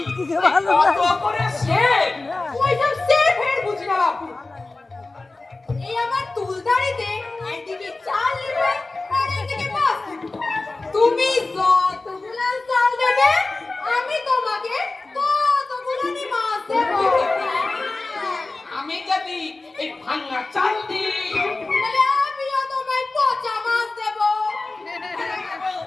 কত করে সেফ? ওইসব সেফ হেড বুঝি না বাপু। এই আমার তুলদারিতে একদিকে চাল নেবে আর একদিকে মাছ নেবে। তুমি যতগুলো চাল দেবে আমি তোমাকে ততগুলো মাছ দেবো। আমি যদি এই ভাঙা চাল দিই তাহলে আমিও তোমায় পচা মাছ দেবো।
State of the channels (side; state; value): right; quieter; 3.3 dB